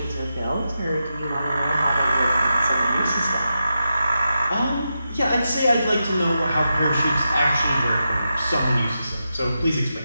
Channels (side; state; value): both; inverted; correlation -0.88